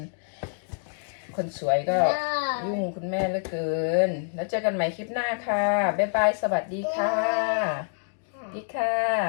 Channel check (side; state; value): right; silent; digital silence